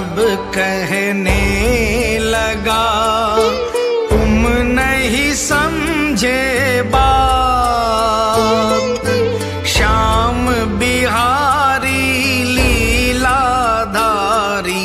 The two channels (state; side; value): identical; both; correlation 1.00